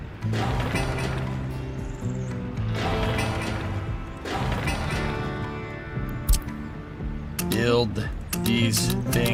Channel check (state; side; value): identical; both; correlation 1.00